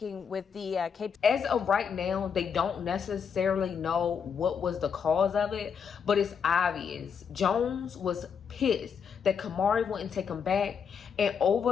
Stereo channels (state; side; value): quieter; right; 6.8 dB